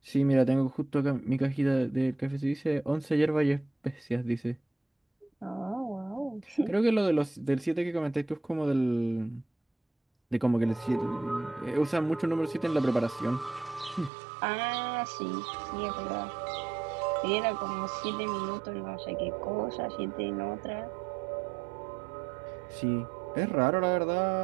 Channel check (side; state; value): left; drops out; at 14.1 s